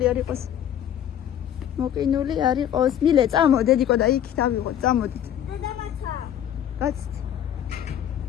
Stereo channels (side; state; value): right; quieter; 10.3 dB